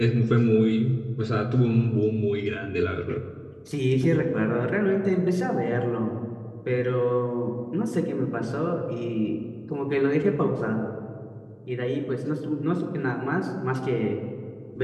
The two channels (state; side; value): identical; both; correlation 1.00